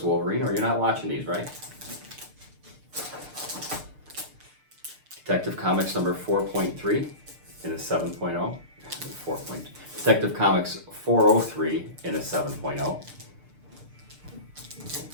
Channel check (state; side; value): late; left; 6.6 ms